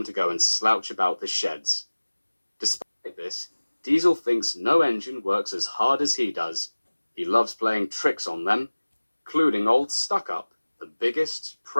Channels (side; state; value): both; inverted; correlation -1.00